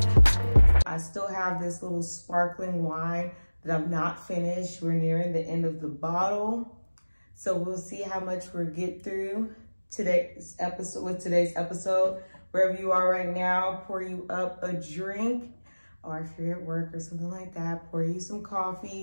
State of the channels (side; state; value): both; inverted; correlation -1.00